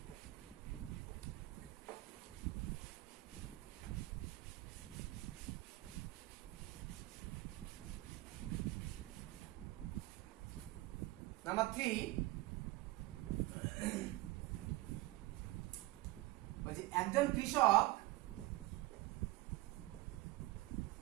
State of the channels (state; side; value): quieter; left; 19.0 dB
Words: নাম্বার 3 বলছি একজন কৃষক